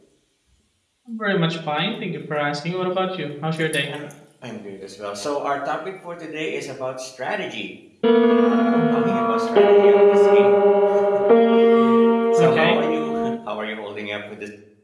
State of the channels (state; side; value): identical; both; correlation 1.00